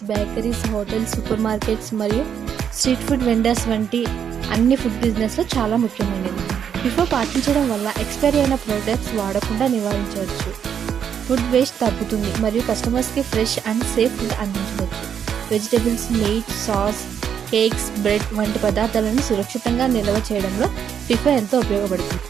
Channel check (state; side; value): quieter; left; 8.2 dB